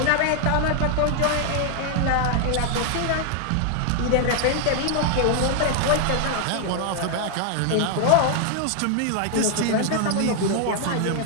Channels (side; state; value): both; different; correlation 0.00